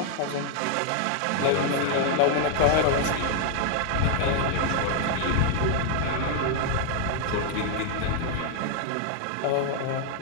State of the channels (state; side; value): different; both; correlation 0.00